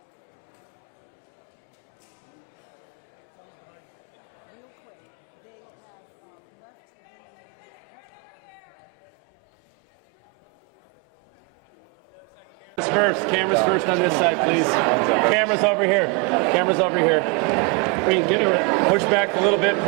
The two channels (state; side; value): quieter; left; 29.5 dB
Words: Real quick, they have left Cameras first on this side, please. Cameras over here. Cameras over here. Get it. Push back a little bit,